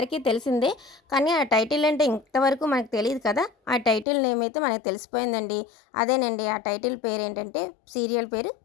తెలిసిందే. కానీ ఆ టైటిల్ అంటే ఇంతవరకు మనకు తెలీదు కదా! ఆ టైటిల్ నేమ్ అయితే మనకు తెలిసిపోయిందండి. అదేనండి ఆ టైటిల్ పేరేంటంటే సీరియల్ పేరు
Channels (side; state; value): right; drops out; at 4.0 s